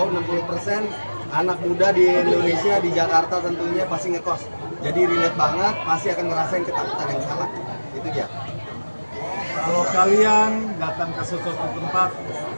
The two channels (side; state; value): both; inverted; correlation -1.00